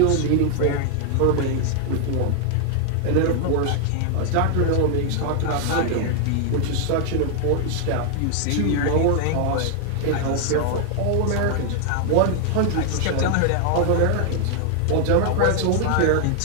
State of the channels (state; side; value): different; both; correlation 0.00